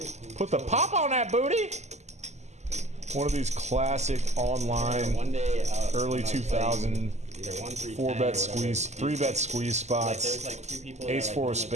Put the pop on that booty. One of these classic online One day, early when I was 2000 either 1, 3, 4-bet squeeze, 3-bet squeeze spots. There's like 2 people Ace that, 4 like, of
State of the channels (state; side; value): late; left; 0.33 ms